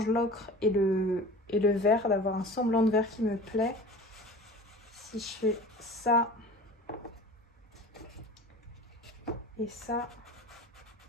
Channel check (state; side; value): normal; both; correlation 0.39